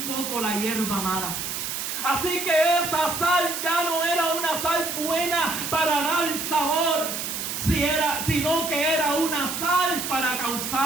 poco la hierba mala. Así que esa sal ya no era una sal buena para dar sabor, sino que era una sal para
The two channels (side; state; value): right; noise; hiss, 4 dB below the sound